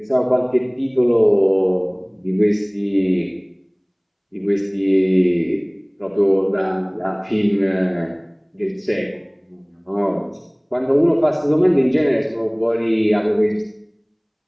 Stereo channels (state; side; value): identical; both; correlation 1.00